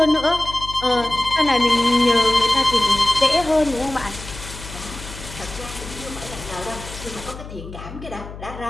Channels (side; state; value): left; noise; hum, 13 dB below the sound